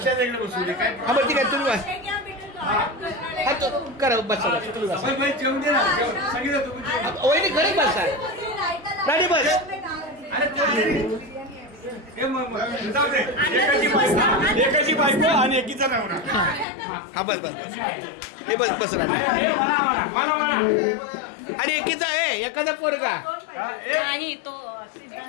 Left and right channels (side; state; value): right; drops out; at 16.7 s